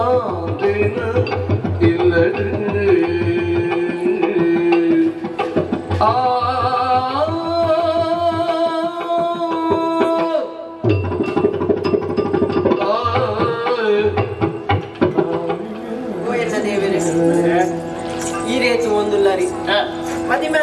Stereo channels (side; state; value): both; identical; correlation 1.00